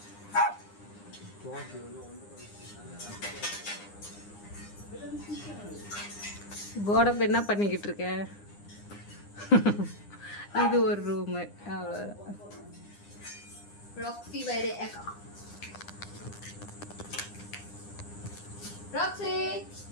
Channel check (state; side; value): late; right; 9.8 ms